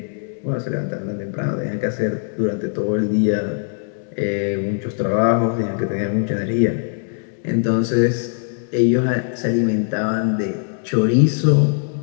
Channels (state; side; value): silent; right; 61 dB below the other